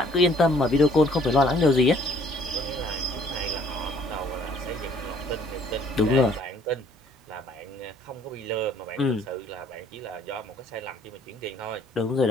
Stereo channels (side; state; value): both; normal; correlation 0.60